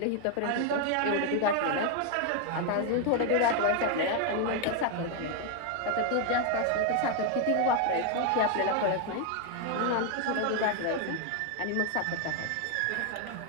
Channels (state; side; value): different; both; correlation 0.01